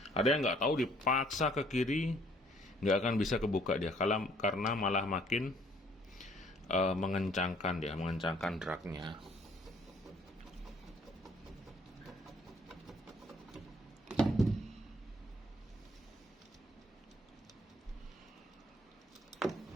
Ada yang nggak tahu dipaksa ke kiri, nggak akan bisa kebuka dia. Karena malah makin mengencangkan dia, mengencangkan dragnya.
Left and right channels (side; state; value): both; normal; correlation 0.61